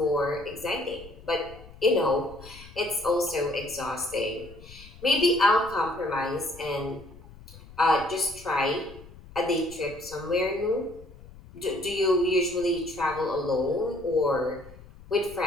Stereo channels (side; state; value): left; noise; rumble, 19 dB below the sound